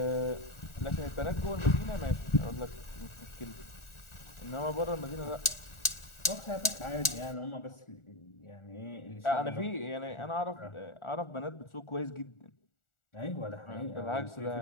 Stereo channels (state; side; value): late; right; 1.4 ms